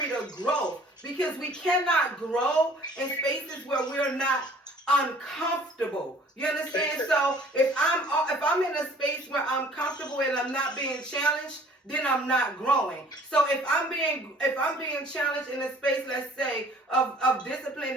of growth. Because we cannot grow in spaces where we're not uncomfortable. You understand? So if I'm in a space where I'm comfortable and I'm not being challenged, then I'm not growing. So if I'm being challenged in a space, let's say, of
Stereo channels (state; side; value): normal; both; correlation 0.52